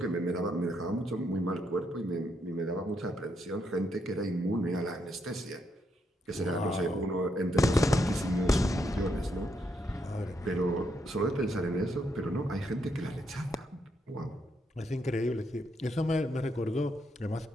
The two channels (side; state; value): both; normal; correlation 0.78